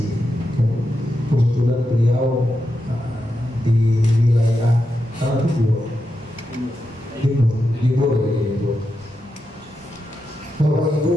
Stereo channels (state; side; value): normal; both; correlation 0.87